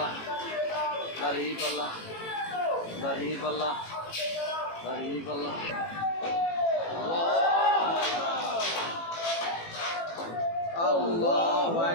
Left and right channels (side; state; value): right; late; 18 ms